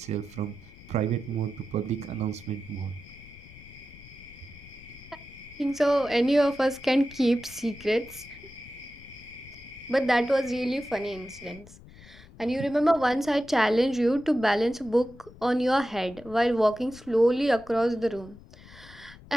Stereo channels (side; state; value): left; noise; rumble, 20 dB below the sound